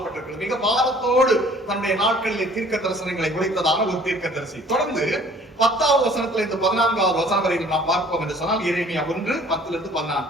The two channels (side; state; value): both; normal; correlation 0.53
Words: மிக பாரத்தோடு தன்னுடைய நாட்களிலே தீர்க்க தரிசனங்களை உரைத்ததான ஒரு தீர்க்க தரிசி. தொடர்ந்து 10வது வசனத்துல இருந்து 14வது வசனம் வரை நாம் பார்ப்போம் என்று சொன்னால் எரேமியா 1:10-14.